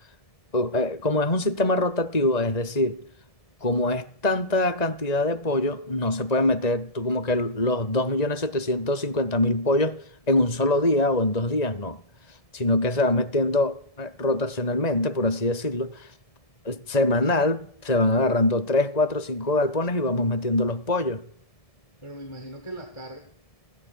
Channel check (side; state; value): right; late; 1.9 ms